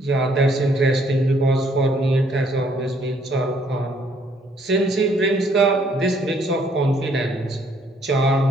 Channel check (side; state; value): both; normal; correlation 0.66